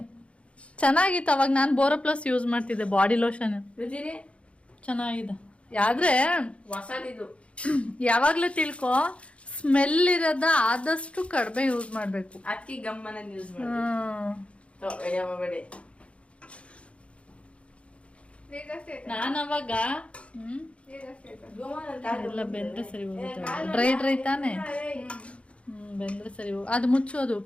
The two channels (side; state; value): right; late; 0.061 ms